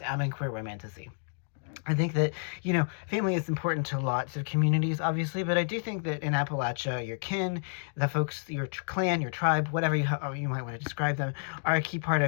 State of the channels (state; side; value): silent; right; digital silence